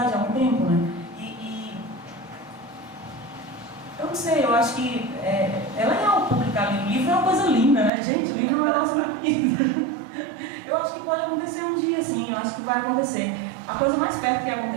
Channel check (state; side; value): drops out; left; at 7.9 s